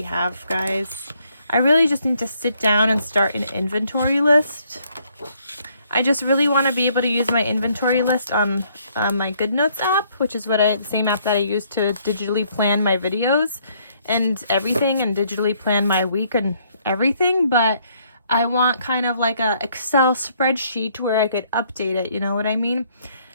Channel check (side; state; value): both; inverted; correlation -0.68